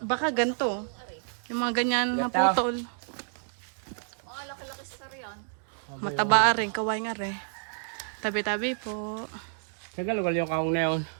ganito. Yung mga ganyan na Gata. putol. Mataba rin, kaway nga rin. Tabi-tabi po. Saan ka lugar yung kaong na yun?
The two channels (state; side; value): silent; left; digital silence